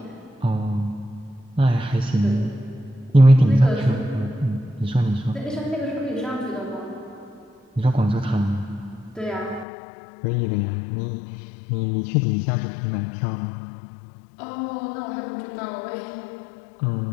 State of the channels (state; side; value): drops out; right; at 9.7 s